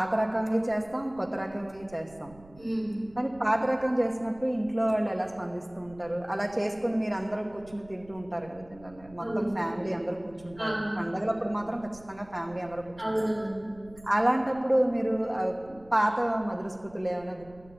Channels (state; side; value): noise; right; rumble, 22 dB below the sound